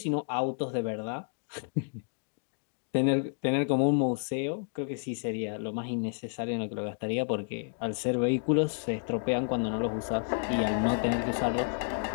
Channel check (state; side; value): silent; right; digital silence